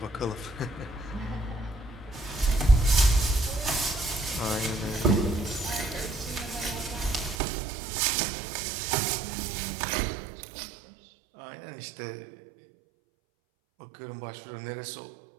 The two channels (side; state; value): left; drops out; at 7.4 s